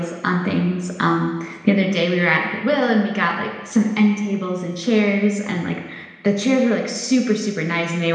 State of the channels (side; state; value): both; identical; correlation 1.00